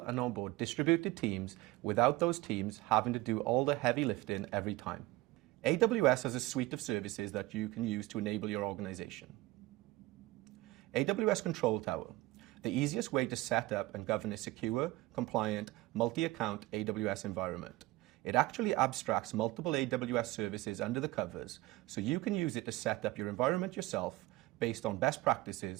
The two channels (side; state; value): left; quieter; 19.1 dB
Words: onboard distributed teams without those teams having to do all the heavy lifting every time. AWS has a suite of services that you can use to enable your organization. Aws Control Tower, the easiest way to set up and govern a secure, compliant, multi-account AWS environment. It actually abstracts multiple AWS services under the covers, so you can use it to set up your environment yourself based on best